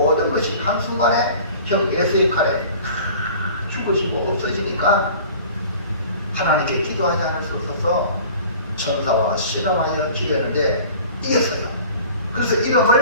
것이 한순간에 형 에서의 칼에 죽어지고 없어지니까 하나님께 기도하지 않을 수 없어서 천사와 실험하여 기도했는데 이겼어요. 그래서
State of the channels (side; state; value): both; inverted; correlation -0.45